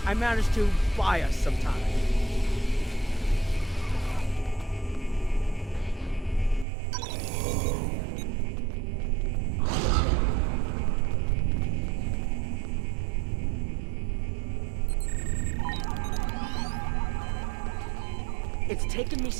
I managed to buy us some time. It's taken me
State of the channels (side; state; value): left; drops out; at 6.7 s